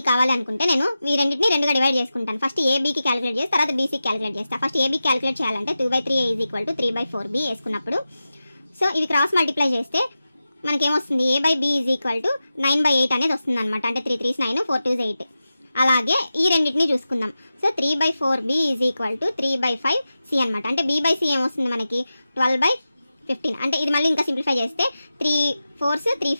కావాలి అనుకుంటే నేను ఈ రెండింటిని 2గా డివైడ్ చేసుకుంటాను. ఫస్ట్ ABకి క్యాలిక్యులేట్ చేసి తర్వాత BCకి క్యాలిక్యులేట్ చేస్తాను. ఫస్ట్ AB క్యాలిక్యులేట్ చేయాలంటే 2/3 A is equal to 3/4B వేసుకున్నప్పుడు, సో ఇవి క్రాస్ మల్టిప్లై చేస్తే మనకేమొస్తుంది, A/B is equal to 9/8 అనేది వస్తుంది అనమాట. అంటే 3 3s 9, 4 2s 8. అలాగే ఈ రెండింటిని చూసుకుందాం. So 3/4B is equal to 3/5 C అనమాట. అంటే B/C ఏమొస్తుంది మనకి 12/15. అంటే ఇది మళ్ళీ ఇంకా సింప్లిఫై చేస్తే 3 4s 3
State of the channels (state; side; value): inverted; both; correlation -0.93